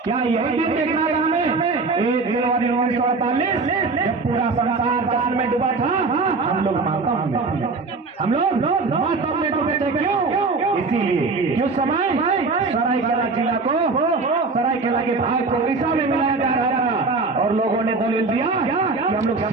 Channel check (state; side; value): quieter; left; 4.0 dB